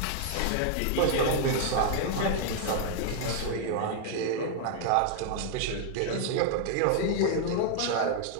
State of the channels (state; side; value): different; both; correlation 0.00